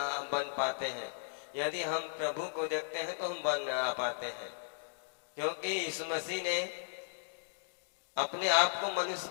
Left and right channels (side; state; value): right; silent; digital silence